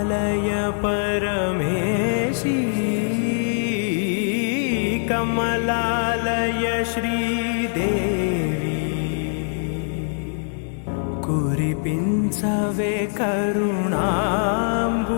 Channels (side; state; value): right; silent; digital silence